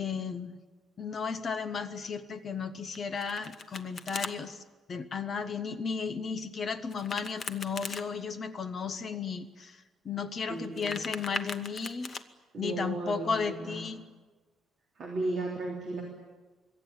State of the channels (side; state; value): right; quieter; 3.8 dB